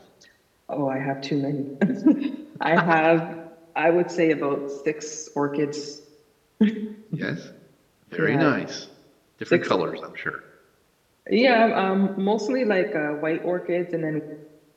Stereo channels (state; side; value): identical; both; correlation 1.00